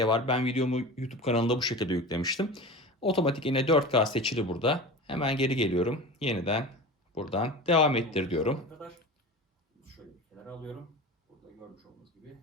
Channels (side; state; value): both; normal; correlation 0.32